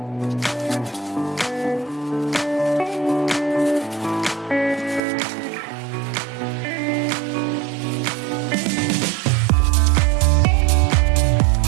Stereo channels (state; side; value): drops out; left; at 5.0 s